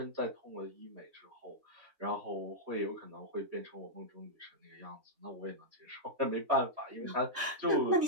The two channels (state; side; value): late; left; 3.6 ms